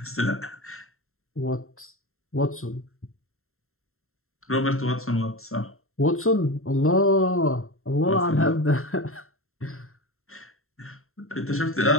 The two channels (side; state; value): right; late; 0.62 ms